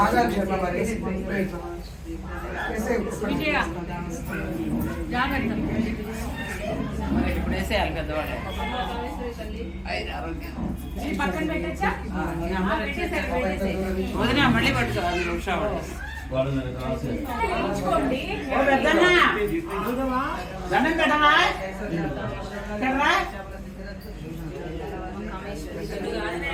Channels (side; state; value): both; identical; correlation 1.00